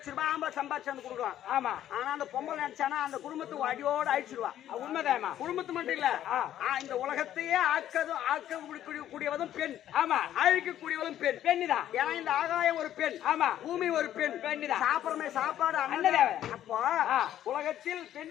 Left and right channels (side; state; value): right; quieter; 11.7 dB